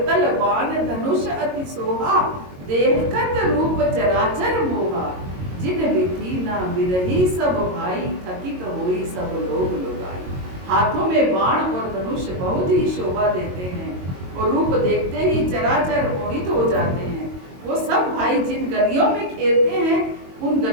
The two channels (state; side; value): late; left; 22 ms